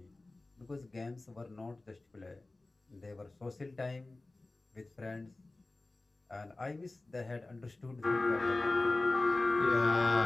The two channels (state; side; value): quieter; right; 3.1 dB